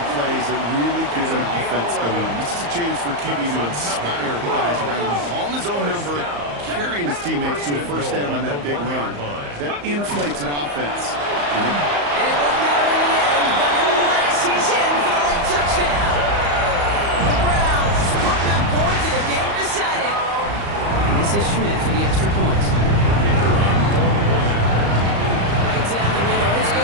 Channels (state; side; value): late; left; 34 ms